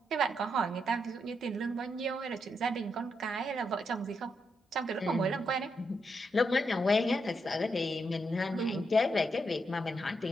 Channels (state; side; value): normal; both; correlation 0.82